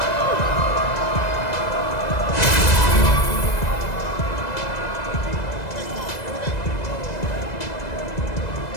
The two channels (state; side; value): late; right; 2.0 ms